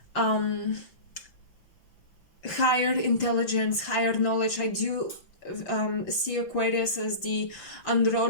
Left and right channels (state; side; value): late; right; 5.9 ms